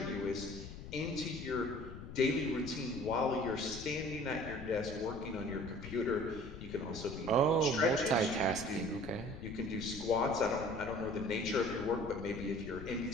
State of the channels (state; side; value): noise; left; rumble, 11 dB below the sound